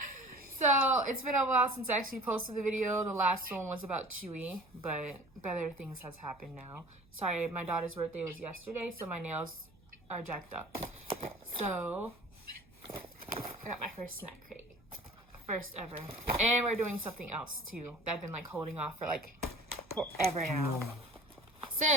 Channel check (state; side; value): noise; right; hum, 29 dB below the sound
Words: So it's been a while since I actually posted the video. The last one was about Chewy, but better things has happened now. Sorry, my daughter's birthday was yesterday, so my nails are jacked up. So I got my first snack crate, first ever, and we're doing something else too that I've been like holding off for like forever now.